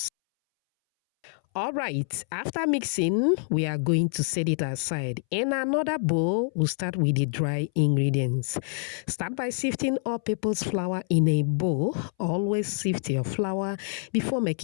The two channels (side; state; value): right; silent; 60 dB below the other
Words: All right, after mixing, we are going to set it aside. In another bowl, we'll start with the dry ingredients. Start by sifting all-purpose flour in a bowl. Always sift your flour before